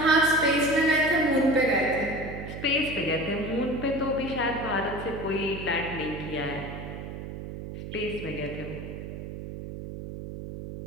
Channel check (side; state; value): right; noise; hum, 9 dB below the sound